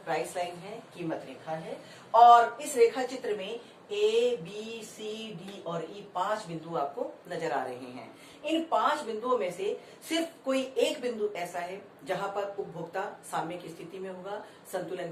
प्राइस लाइन है, कीमत रेखा है, और इस रेखा चित्र में A, B, C, D और E 5 बिंदु आपको नजर आ रहे हैं। इन 5 बिंदुओं में से सिर्फ कोई एक बिंदु ऐसा है जहां पर उपभोक्ता साम्य की स्थिति में होगा, संतुलन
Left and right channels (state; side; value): identical; both; correlation 1.00